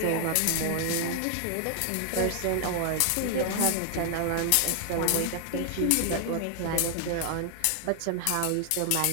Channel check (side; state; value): both; different; correlation 0.00